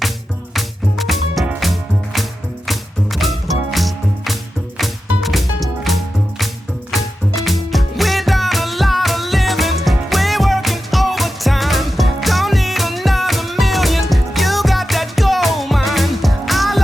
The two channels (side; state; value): both; normal; correlation 0.91